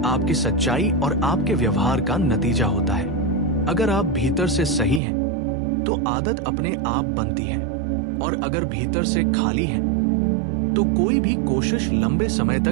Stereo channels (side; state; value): left; drops out; at 5.0 s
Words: आपकी सच्चाई और आपके व्यवहार का नतीजा होता है। अगर आप भीतर से सही हैं, तो आदत अपने आप बनती है, और अगर भीतर से खाली हैं, तो कोई भी कोशिश लंबे समय